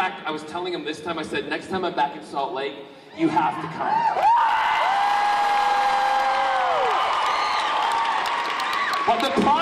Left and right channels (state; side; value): identical; both; correlation 1.00